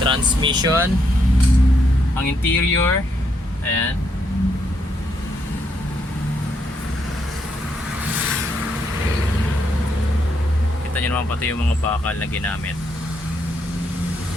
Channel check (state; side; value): normal; both; correlation 0.76